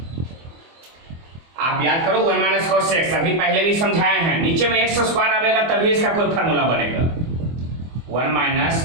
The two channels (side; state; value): left; late; 24 ms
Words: आप याद करो 1 माइनस cos x अभी पहले भी समझाए हैं, नीचे में x स्क्वायर आएगा तभी इसका कोई फार्मूला बनेगा। 1